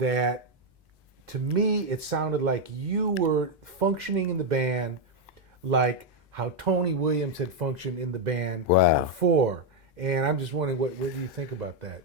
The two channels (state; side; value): normal; both; correlation 0.02